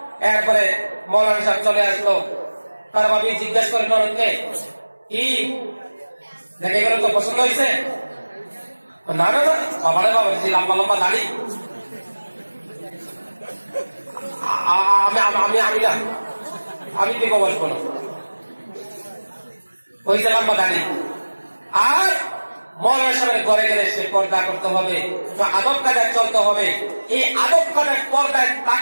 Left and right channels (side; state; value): both; inverted; correlation -1.00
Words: এরপরে মৌলানা সাহেব চলে আসলো, তার ভাবি জিজ্ঞেস করেন অনেককে, কি দেখে গেল, তো পছন্দ হয়েছে? না না না, বাবারে বাবা, লম্বা লম্বা দাড়ি, আমি না, আমি বিবাহ বসবো না, হয়েছে লম্বা দাড়ি। আর মৌলানা সাহেবের ঘরে গেলে সে পর্দা করতে হবে, আদব কায়দায় চলতে হবে। এই আদব কায়দায় পর্দায়